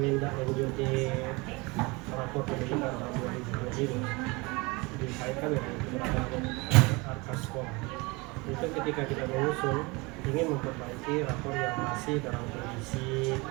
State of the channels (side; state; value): left; quieter; 25.8 dB